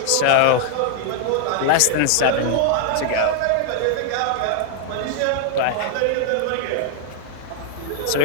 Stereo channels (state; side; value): different; both; correlation 0.00